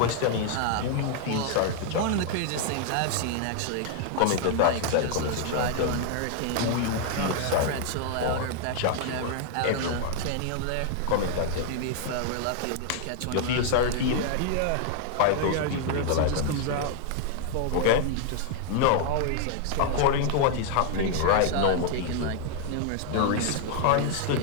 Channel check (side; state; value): both; different; correlation 0.00